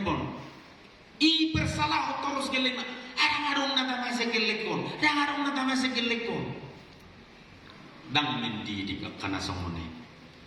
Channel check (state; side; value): identical; both; correlation 1.00